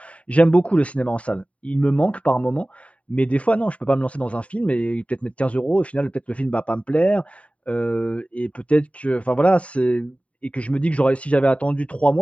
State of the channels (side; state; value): right; late; 0.066 ms